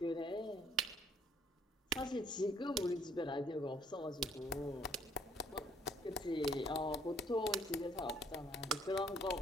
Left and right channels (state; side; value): normal; both; correlation 0.63